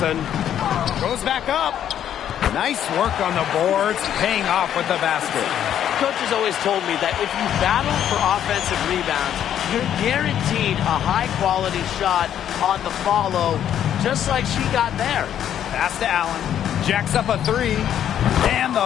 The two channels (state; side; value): quieter; right; 10.1 dB